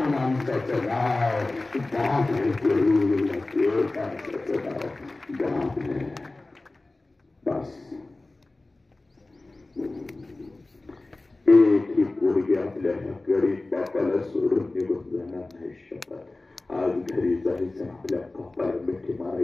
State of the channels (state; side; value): quieter; right; 3.0 dB